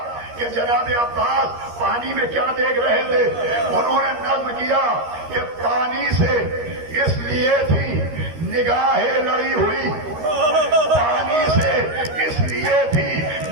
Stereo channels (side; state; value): left; late; 13 ms